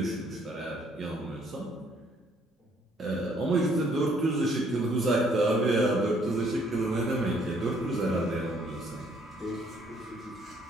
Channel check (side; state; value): both; normal; correlation 0.65